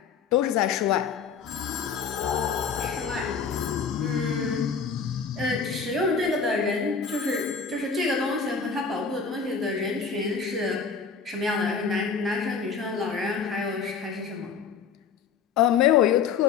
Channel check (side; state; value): right; quieter; 6.0 dB